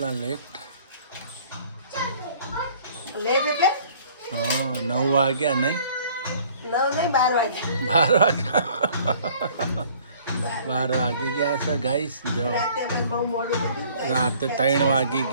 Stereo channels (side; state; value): both; inverted; correlation -0.55